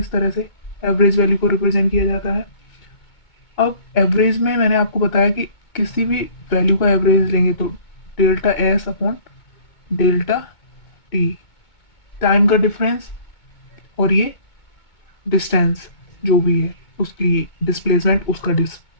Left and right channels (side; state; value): right; late; 2.2 ms